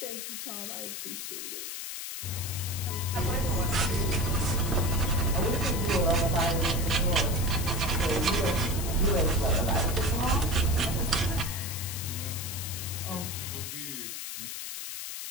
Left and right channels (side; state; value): left; noise; hiss, 6 dB below the sound